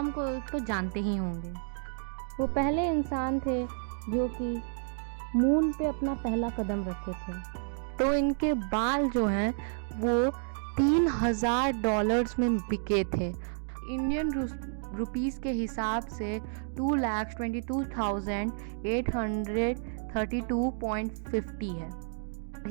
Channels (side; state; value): left; silent; digital silence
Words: को तो जानते ही होंगे। वो पहले इंसान थे जो कि मून पे अपना पहला कदम रखे थे। तो इनके बाल जो हैं वो $3000 में बिके थे। इंडियन रुपीस के हिसाब से 2,22,832.50 है।